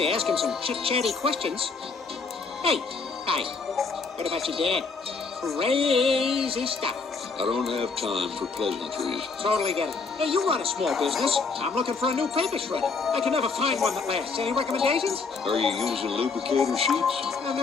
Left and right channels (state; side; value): quieter; right; 4.6 dB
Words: ask him some chit-chatty questions. Hey, hi. What about your dad? Crazy stuff. I don't have time for pleasantries. Totally get it. Hey, you run a small business. I'm looking for a new paper shredder. I can never find one that lasts. Any recommendations? Are you using lubricator sheets? I've